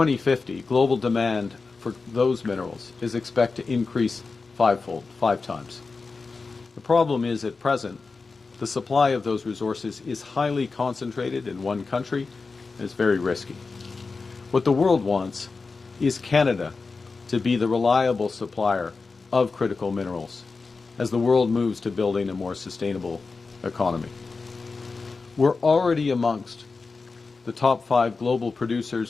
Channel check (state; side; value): quieter; right; 4.3 dB